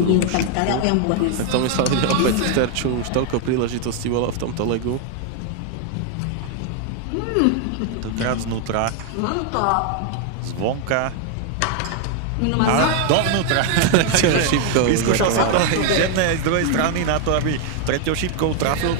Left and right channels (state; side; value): different; both; correlation 0.01